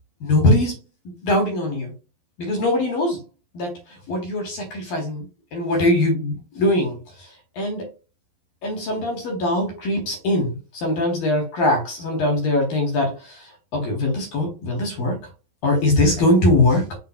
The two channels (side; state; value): right; late; 11 ms